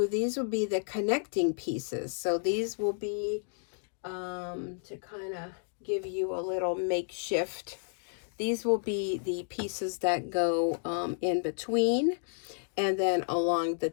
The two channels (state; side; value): silent; right; digital silence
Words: these will be the connecting pieces. So these will be to kind of give you a little makeshift. These will be the pieces that go in between and then along the